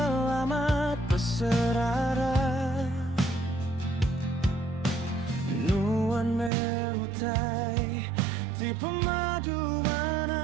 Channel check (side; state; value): left; drops out; at 6.5 s